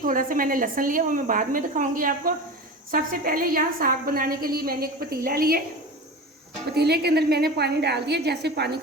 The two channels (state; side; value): normal; both; correlation 0.30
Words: सा मैंने लहसुन लिया, वो मैं बाद में दिखाऊंगी आपको। सबसे पहले यहाँ साग बनाने के लिए मैंने एक पतीला लिया, पतीले के अंदर मैंने पानी डाल दिया। जैसे पानी